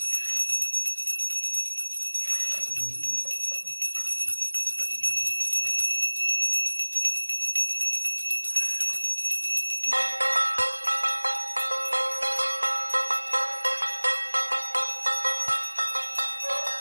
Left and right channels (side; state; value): both; inverted; correlation -1.00